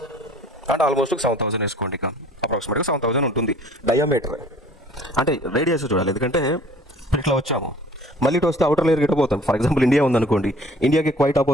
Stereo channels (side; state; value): both; normal; correlation 0.51